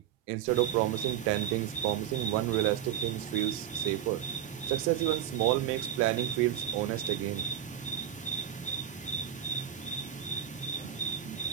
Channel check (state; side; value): quieter; left; 10.5 dB